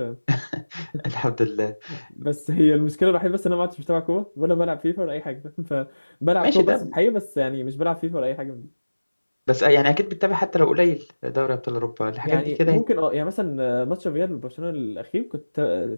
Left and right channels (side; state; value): both; inverted; correlation -1.00